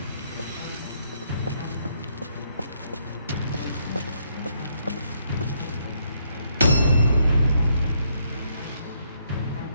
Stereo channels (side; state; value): both; inverted; correlation -0.73